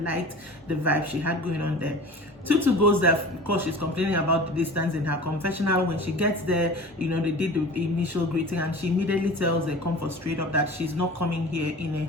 liked the vibe she had going on there. Tutu goes there because she's complaining about the distance in her confessional. When she gets there, you know, they did the initial greeting and she immediately tells the Comfort straight up that she's not coming here in a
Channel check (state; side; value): normal; both; correlation 0.38